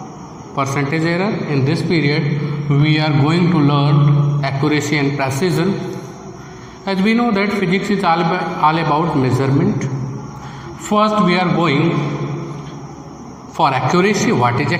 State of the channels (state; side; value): identical; both; correlation 1.00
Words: percentage error. In this period, we are going to learn accuracy and precision. As we know that physics is all about measurement. First, we are going for accuracy. What is